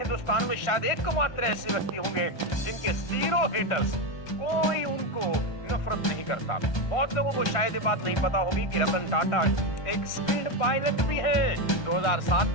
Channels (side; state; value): right; late; 1.2 ms